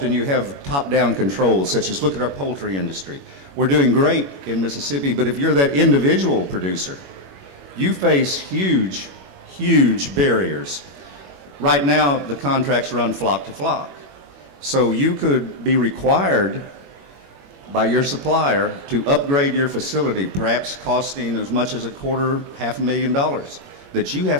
you have top-down controls, such as look at our poultry industry. We're doing great in Mississippi, but if you're that individual producer, you face huge, huge barriers. Right now, the contracts run flock to flock. So you could be required by your supplier to upgrade your facility, perhaps costing as much as $250,000, that you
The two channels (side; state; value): left; late; 21 ms